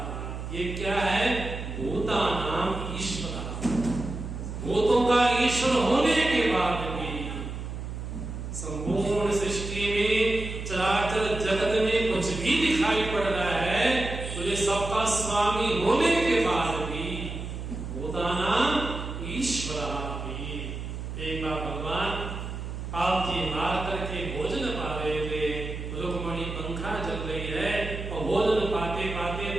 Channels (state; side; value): noise; right; hum, 7 dB below the sound